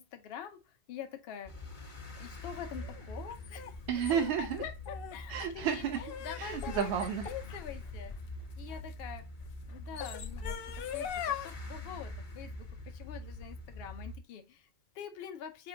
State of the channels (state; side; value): late; right; 2.6 ms